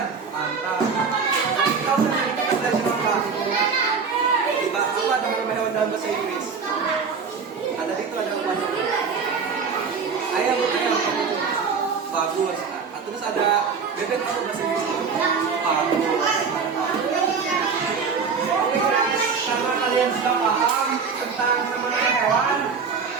Dalam bahasa Inggris ada itu ada apa? Ayam. Bagus. Terus ada bebek apa bahasa Inggris? Bagus. Oke guys, karena kalian sudah paham tentang nama-nama hewan,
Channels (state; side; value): quieter; left; 5.6 dB